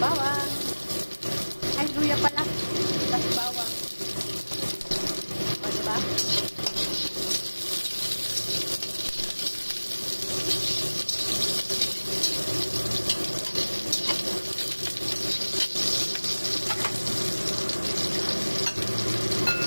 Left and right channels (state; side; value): inverted; both; correlation -1.00